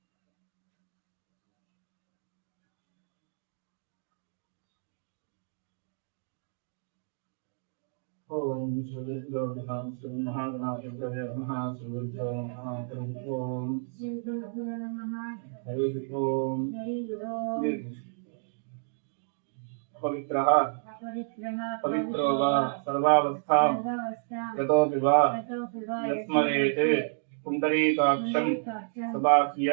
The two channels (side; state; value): left; silent; digital silence